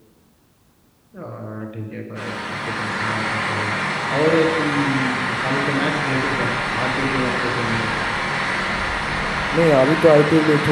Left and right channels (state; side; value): identical; both; correlation 1.00